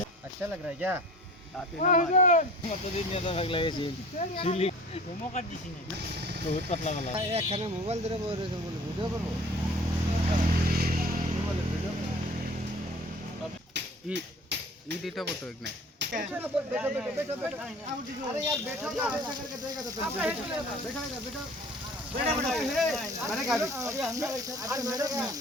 अच्छा लग रहा है क्या? একখানে মোবাইল ধরে বলে ভিডিও করবো। এটা কত এক নাই अरे यार बैठो ना, ऐसा करके देगा तो तुम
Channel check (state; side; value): normal; both; correlation 0.45